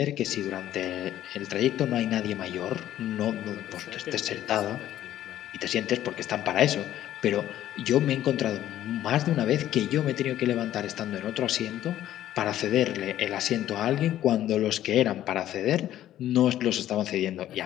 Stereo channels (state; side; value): quieter; right; 12.6 dB